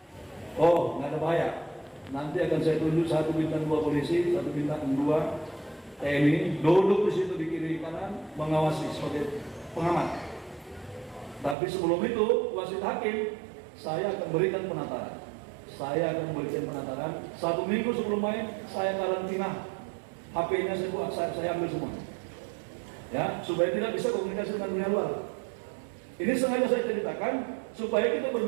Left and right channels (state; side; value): drops out; left; at 11.6 s